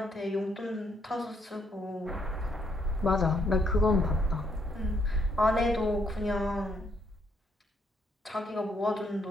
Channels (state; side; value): normal; both; correlation 0.72